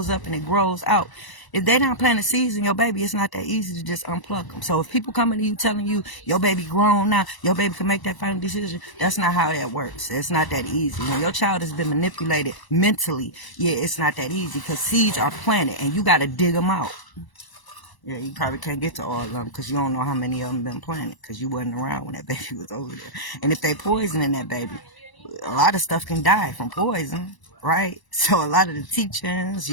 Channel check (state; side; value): late; right; 1.0 ms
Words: up and it grows out. If they don't plant the seeds in your baby, it's not that easy to just unplug them. So if people coming to you telling you your baby grown now, your baby can make that final decision, that's not how that works. It's not that easy. When your child has been manipulated mentally, yeah, it's not that easy because seeds are planted and you got to dig them out. Yeah, you probably can't get to all of them because you don't know how many of them been planted because you wasn't around when that baby was over there. And if they poisoning that baby, a lot of stuff can die from poison, right? So a lot of the teachings,